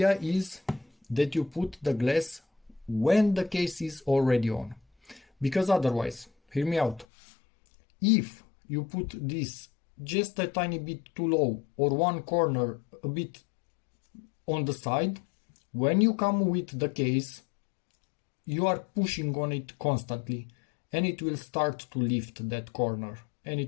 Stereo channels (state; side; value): drops out; right; at 7.1 s